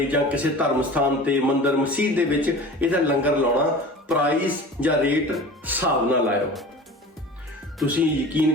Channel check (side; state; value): both; normal; correlation 0.38